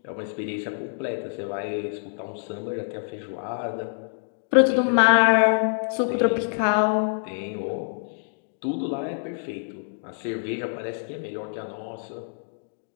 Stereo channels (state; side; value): silent; right; digital silence